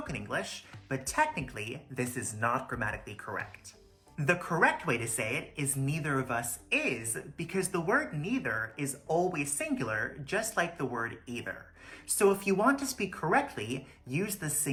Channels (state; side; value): identical; both; correlation 1.00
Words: English, but technically this is not grammatically correct. The correct way to say it is neither of us is, because the word neither is always singular, just like the word either. So if you want to speak correctly, use the